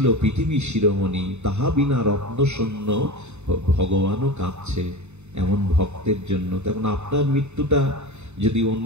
পৃথিবী শিরোমণি, তাহা বিনা রত্ন শূন্য, ভগবানও কাঁদছে এমন ভক্তের জন্য। তেমন আপনার মৃত্যুটা যদি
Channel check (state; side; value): late; left; 0.82 ms